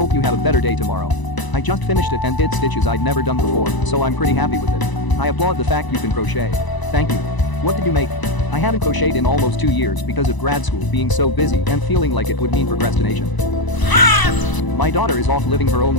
you have a better day tomorrow. I just finished it and did stitches I'd never done before, so I'm pretty happy with it. I applaud the fact you can crochet. Thank you. What did you make? I haven't crocheted in almost 2 years because of grad school being so busy and feeling like it would mean procrastination. My daughter is off living her own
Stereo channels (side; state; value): right; late; 1.0 ms